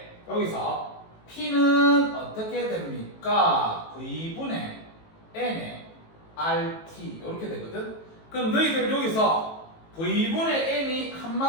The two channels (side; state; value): right; late; 18 ms